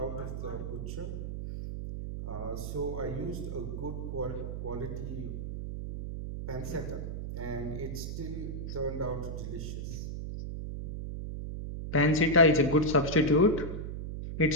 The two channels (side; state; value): right; noise; hum, 5 dB below the sound